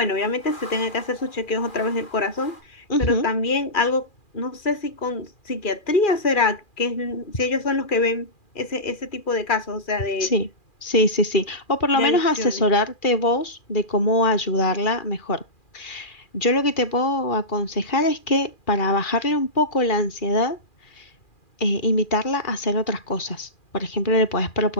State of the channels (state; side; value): late; right; 2.4 ms